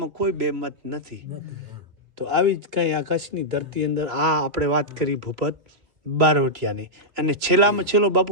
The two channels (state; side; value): late; left; 3.0 ms